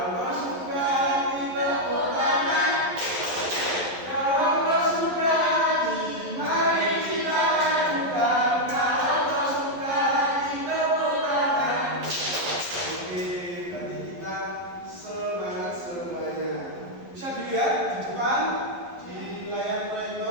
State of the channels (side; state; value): left; late; 11 ms